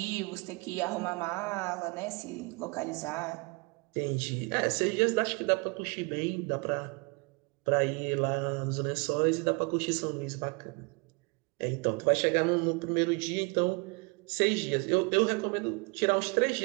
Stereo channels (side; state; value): left; quieter; 30.1 dB